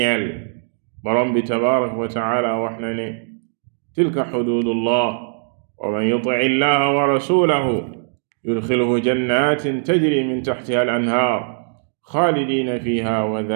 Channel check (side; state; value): left; silent; digital silence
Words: borom bi tabaraka wa taala wax na ne tilka xududullah wa man yuti illaha wa rasulahu yudxilhu jannatin tajri min taxtiha al anhaar xaalidina fiha wa